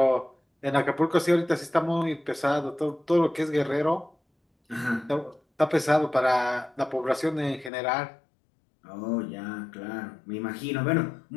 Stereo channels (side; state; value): right; drops out; at 7.7 s